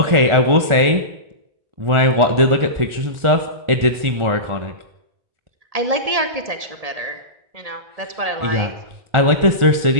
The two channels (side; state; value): left; late; 1.4 ms